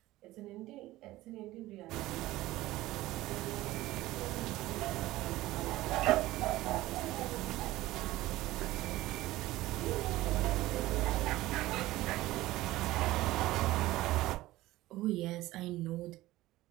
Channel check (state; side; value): quieter; left; 17.2 dB